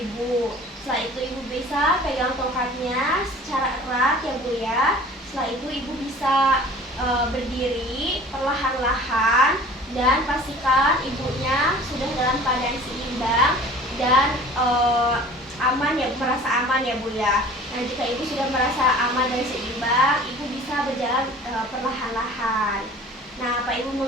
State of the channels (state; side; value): normal; both; correlation 0.45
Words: Setelah itu Ibu bisa pegang tongkatnya secara erat ya Bu ya. Setelah itu Ibu bisa berdiri perlahan-lahan dan pastikan ibunya sudah dalam keadaan seimbang dan aman ya, merasa aman ya Bu ya. Nah jika Ibu sudah merasa aman dan seimbang, Ibu bisa berjalan perlahan-lahan. Nah, Pak Ibu